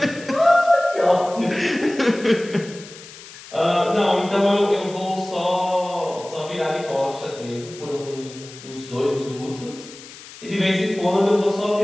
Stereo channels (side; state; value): left; noise; hiss, 17 dB below the sound